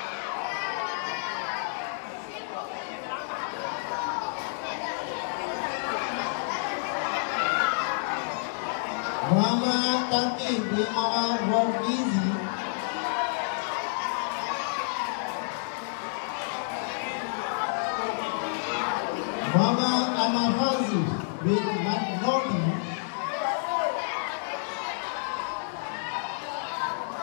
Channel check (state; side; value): silent; right; digital silence